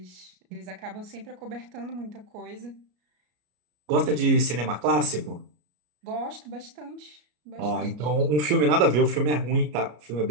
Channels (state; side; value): late; left; 33 ms